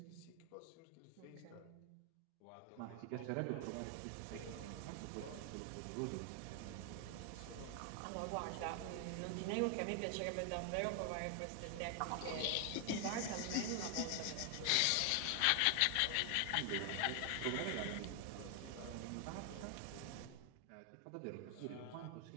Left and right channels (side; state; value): both; different; correlation 0.00